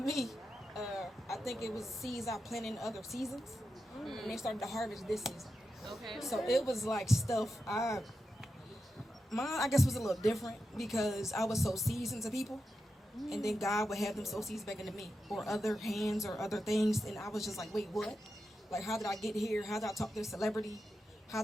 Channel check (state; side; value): normal; both; correlation 0.89